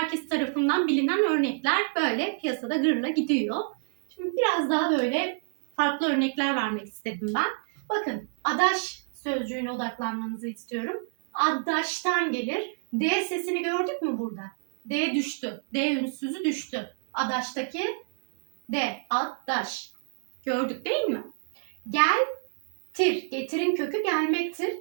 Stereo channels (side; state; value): left; silent; digital silence